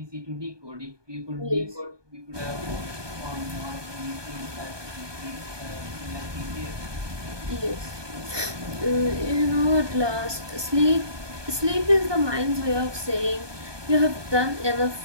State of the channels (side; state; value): left; late; 1.2 ms